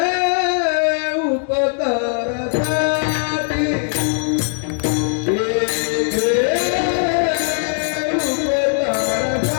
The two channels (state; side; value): silent; right; 66 dB below the other